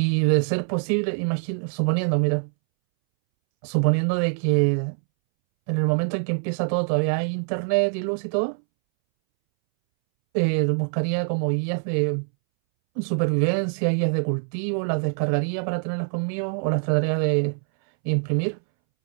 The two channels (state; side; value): silent; left; 62 dB below the other